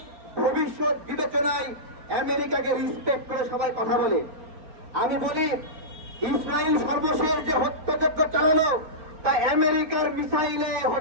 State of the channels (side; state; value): left; late; 4.3 ms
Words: ভবিষ্যৎ বিবেচনায় আমেরিকাকে রিসপেক্ট করে সবাই কথা বলে। আমি বলি, ইসরায়েল সর্বশেষ যে হত্যাযজ্ঞ চালালো তা আমেরিকার মিসাইলে